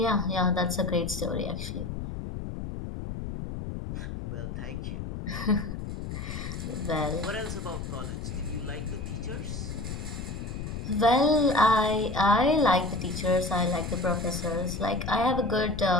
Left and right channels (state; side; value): noise; left; rumble, 6 dB below the sound